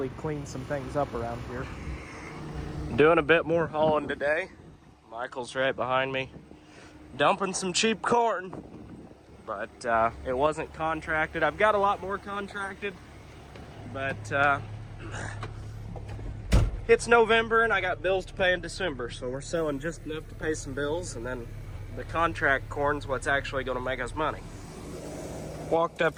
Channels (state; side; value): identical; both; correlation 1.00